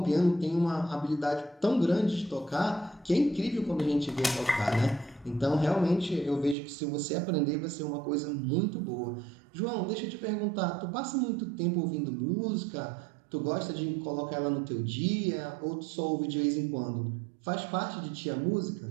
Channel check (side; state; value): left; drops out; at 6.6 s